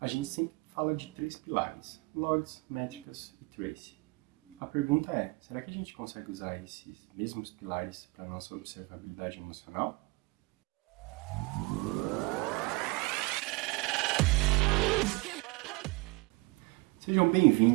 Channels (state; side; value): quieter; left; 24.9 dB